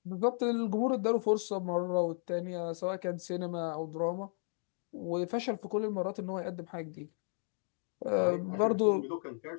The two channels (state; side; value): silent; right; 55 dB below the other